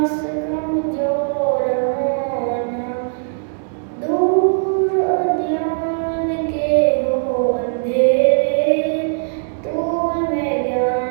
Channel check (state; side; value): silent; left; 66 dB below the other